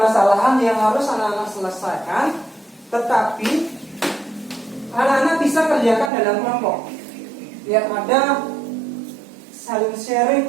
yang harus anak-anak selesaikan, tetapi anak-anak bisa kerjakan dalam kelompok. Biar ada saling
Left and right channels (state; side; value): drops out; left; at 6.1 s